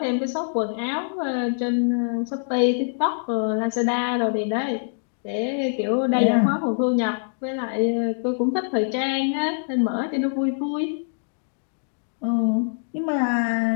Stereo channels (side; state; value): right; silent; 62 dB below the other